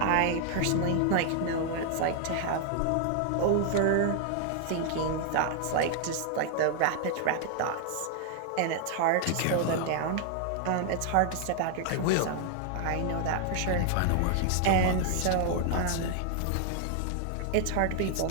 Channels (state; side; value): different; both; correlation 0.00